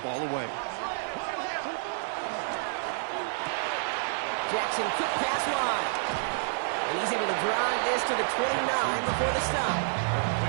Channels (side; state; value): left; silent; 58 dB below the other